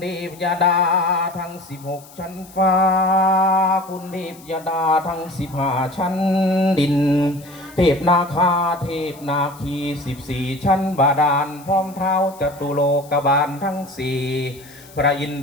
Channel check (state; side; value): noise; left; hiss, 22 dB below the sound